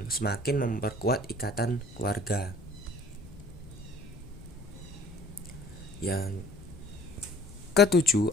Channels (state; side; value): noise; left; rumble, 18 dB below the sound